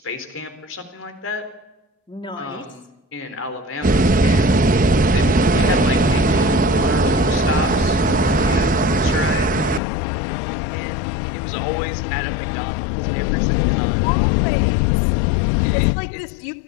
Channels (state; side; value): drops out; right; at 9.8 s